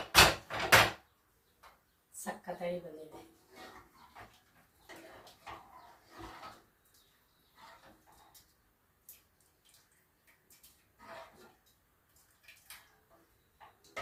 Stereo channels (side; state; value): both; identical; correlation 1.00